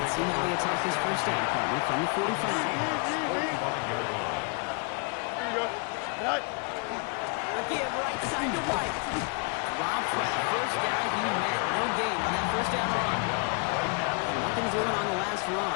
Let's see how he attacks his first down partner from the 45. Here you go. Right. A give right side to White. Robbed by the first guy he met. No gain on that first down run. And nothing doing on the last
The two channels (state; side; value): quieter; right; 35.6 dB